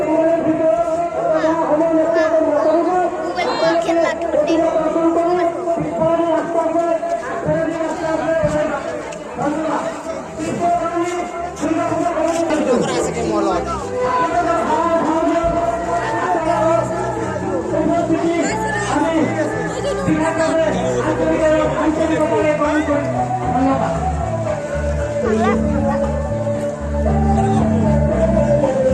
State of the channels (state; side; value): identical; both; correlation 1.00